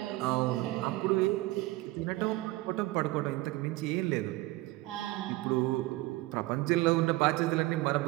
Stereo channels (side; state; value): left; quieter; 19.6 dB